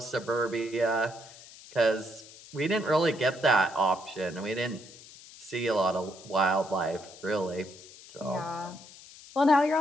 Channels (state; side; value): noise; left; hiss, 19 dB below the sound